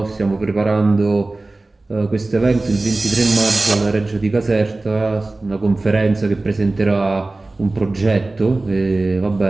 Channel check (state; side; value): quieter; left; 3.1 dB